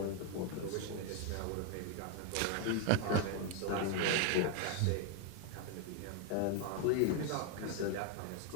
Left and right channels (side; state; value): both; different; correlation 0.01